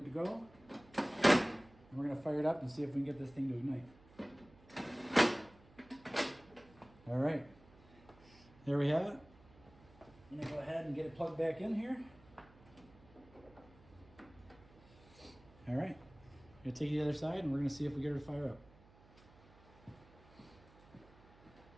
to go. And we're going to fire it up and see if we can get this thing to ignite. All right, there we have it. I'm gonna go ahead and get it plugged back in here. All right, I'm gonna take it to the other side and we're gonna see if we get her to fire up.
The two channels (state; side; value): noise; right; hum, 24 dB below the sound